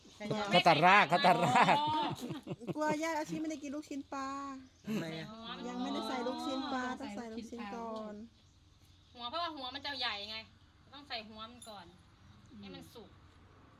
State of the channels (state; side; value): identical; both; correlation 1.00